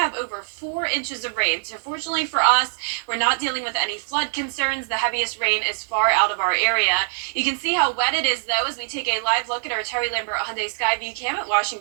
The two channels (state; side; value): silent; left; digital silence